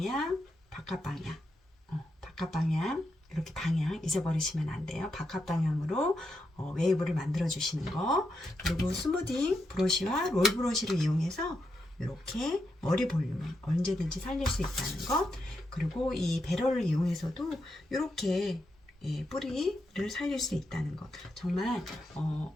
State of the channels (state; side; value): normal; both; correlation 0.84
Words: 이렇게 방향 잊어버리시면 안 돼요. 바깥 방향으로 웨이브를 만들어 주시는 거, 그리고 스무딩 브러쉬와 롤 브러쉬를 이용해서 이렇게 머리 볼륨을 언제든지 살릴 수 있다는 것, 그리고 이 배럴을 이용해서도 이렇게 뿌리를 살릴 수 있다는 것, 정말